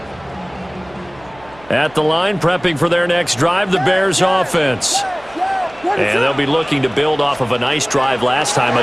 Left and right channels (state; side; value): noise; right; hum, 24 dB below the sound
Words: At the line, prepping for their next drive, the Bears offense. And they'll be looking to build off of a nice drive last time,